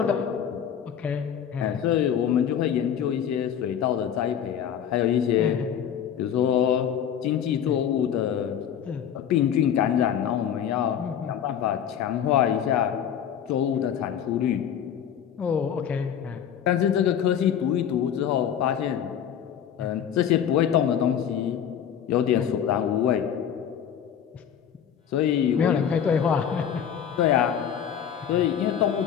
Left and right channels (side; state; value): right; quieter; 8.9 dB